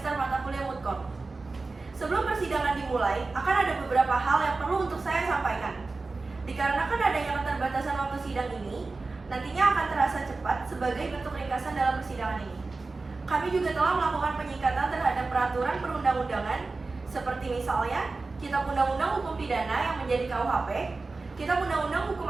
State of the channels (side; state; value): left; quieter; 3.7 dB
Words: mata kuliah Mutkor. Sebelum persidangan dimulai, akan ada beberapa hal yang perlu untuk saya sampaikan. Dikarenakan adanya keterbatasan waktu sidang ini, nantinya akan terasa cepat sebagai bentuk ringkasan dalam persidangan ini. Kami juga telah melakukan penyingkatan terhadap peraturan perundang-undangan, seperti misalnya Kitab Undang-Undang Hukum Pidana yang menjadi KUHP, Kitab Undang-Undang Hukum